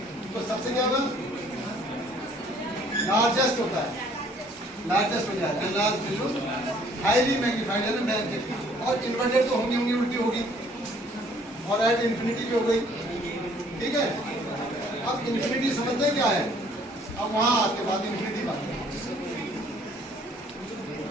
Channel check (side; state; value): both; normal; correlation 0.59